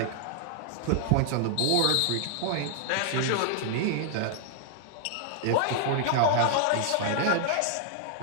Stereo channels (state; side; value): different; both; correlation -0.01